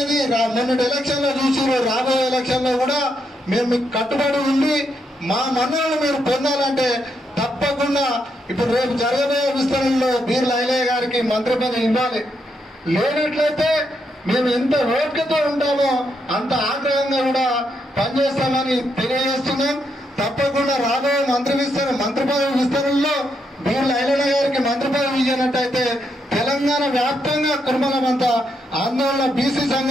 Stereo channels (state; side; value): normal; both; correlation 0.79